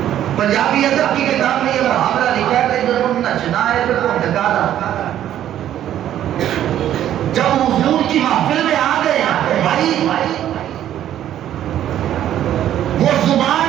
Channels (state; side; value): quieter; left; 11.5 dB